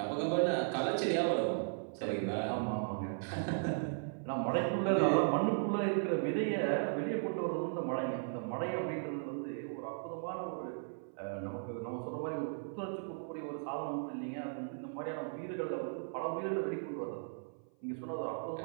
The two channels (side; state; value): left; silent; 53 dB below the other